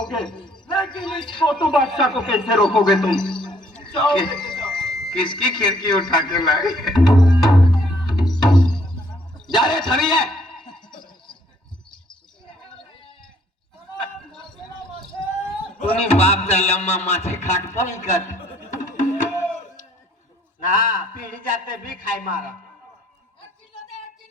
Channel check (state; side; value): normal; both; correlation 0.63